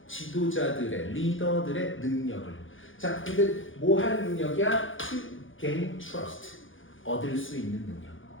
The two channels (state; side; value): late; right; 0.58 ms